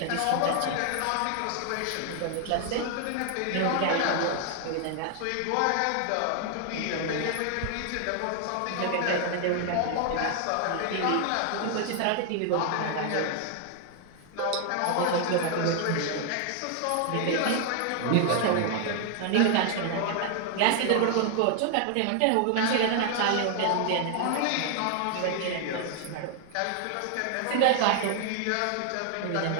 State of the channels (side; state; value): both; different; correlation 0.00